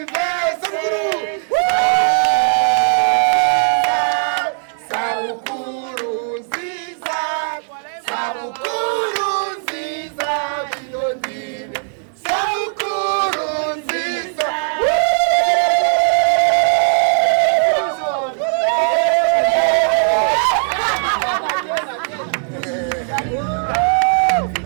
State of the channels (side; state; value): left; silent; digital silence